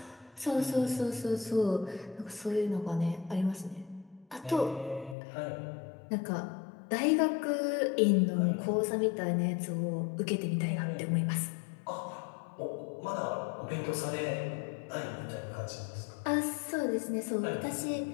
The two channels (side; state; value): right; drops out; at 5.2 s